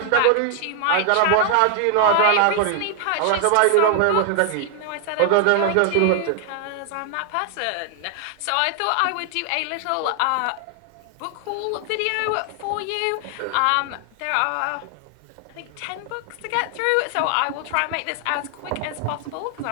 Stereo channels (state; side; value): different; both; correlation 0.00